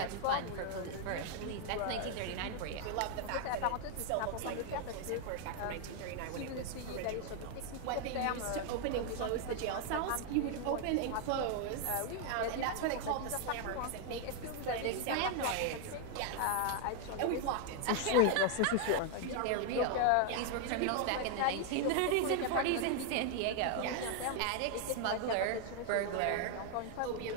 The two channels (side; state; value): both; different; correlation 0.00